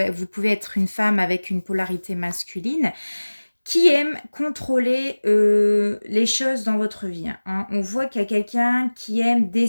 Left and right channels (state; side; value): inverted; both; correlation -1.00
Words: pouvez être une femme avec une polarité masculine, qui aime contrôler les choses dans votre vie. On voit qu'il y a quelqu'un qui aime